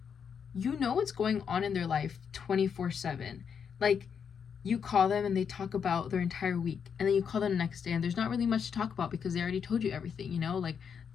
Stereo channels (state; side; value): quieter; right; 7.0 dB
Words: you know what's going on in their life 24/7. Like, you call them and they talk about their entire week, and then you call them the next day and there's not really much to talk about because they already told you everything, like